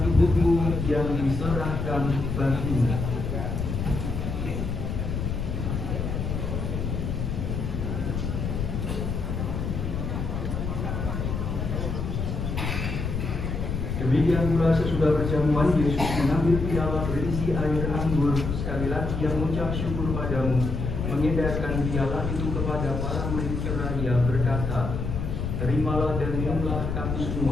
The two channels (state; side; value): noise; left; rumble, 3 dB below the sound